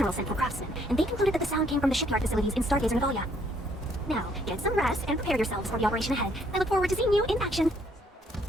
sent for craftsmen, and they concluded that the sound came from the shipyard facilities in Stargazer Navalia. Now, get some rest and prepare yourselves for the operation ahead. I look forward to seeing you in action.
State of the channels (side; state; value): both; normal; correlation 0.67